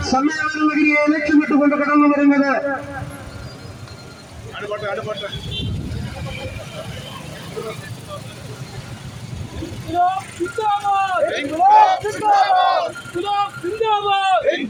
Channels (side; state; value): both; identical; correlation 1.00